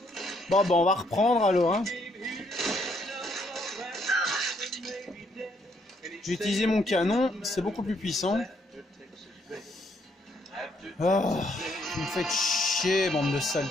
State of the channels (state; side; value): normal; both; correlation 0.71